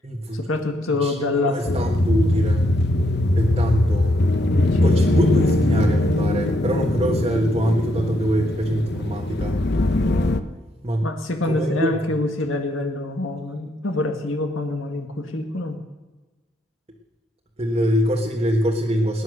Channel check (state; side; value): normal; both; correlation 0.75